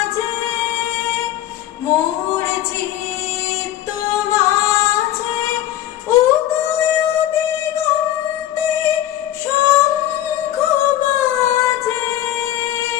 মোর চিত্ত মাঝে উদয় দিগন্তে শঙ্খ বাজে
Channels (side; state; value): right; quieter; 12.9 dB